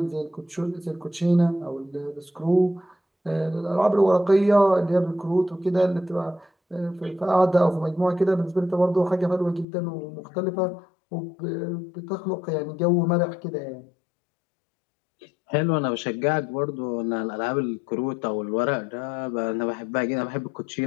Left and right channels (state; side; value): drops out; right; at 9.7 s